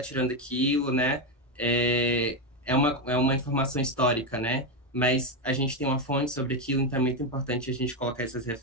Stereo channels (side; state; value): both; normal; correlation 0.08